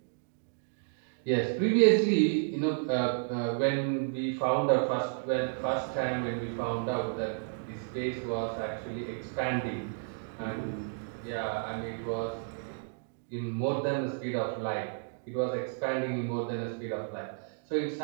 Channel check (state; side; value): silent; left; digital silence